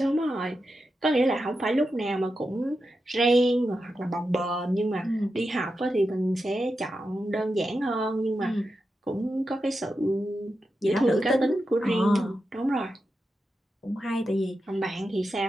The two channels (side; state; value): both; normal; correlation 0.89